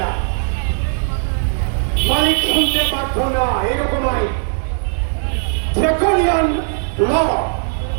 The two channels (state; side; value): silent; left; 58 dB below the other